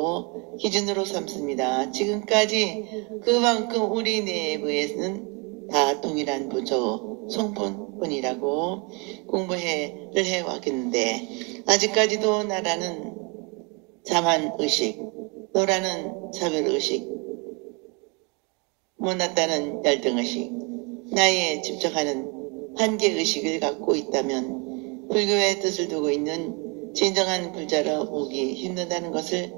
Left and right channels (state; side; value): quieter; left; 31.6 dB